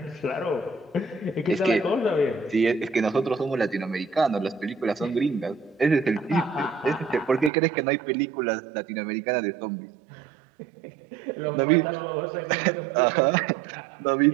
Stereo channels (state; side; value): drops out; left; at 7.5 s